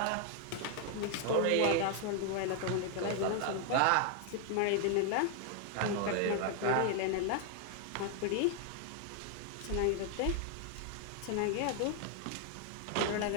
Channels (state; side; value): different; both; correlation 0.00